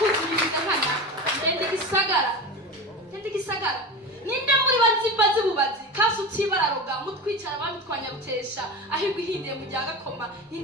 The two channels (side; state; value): both; normal; correlation 0.27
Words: nkana ndende gisagara ninde muri bazi bubazi kasi utibararoga mutwicara bamitwanya rutesha ahirwa ihindiye mu rya gakoma